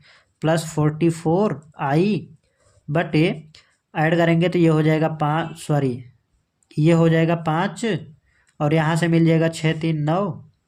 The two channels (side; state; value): both; identical; correlation 1.00